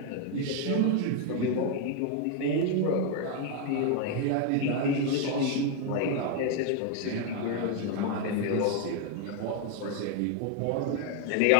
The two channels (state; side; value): different; both; correlation 0.01